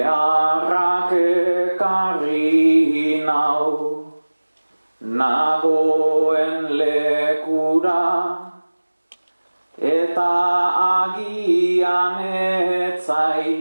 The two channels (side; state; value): both; inverted; correlation -1.00